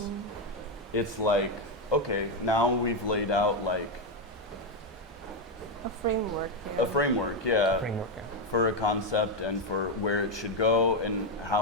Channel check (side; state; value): both; normal; correlation 0.05